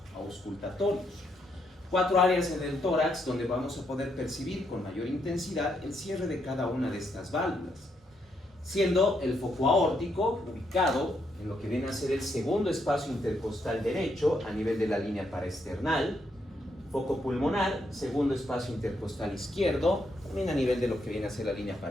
auscultatorios. Cuatro áreas en el tórax donde vamos a poder percibir con mayor intensidad el cierre de cada una de estas válvulas, siendo el foco aórtico ubicado en lo que viene a ser el segundo espacio intercostal derecho a nivel de la línea paraesternal, foco pulmonar, segundo espacio intercostal izquierdo, también a nivel de lo que viene a ser la línea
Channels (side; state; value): both; normal; correlation 0.77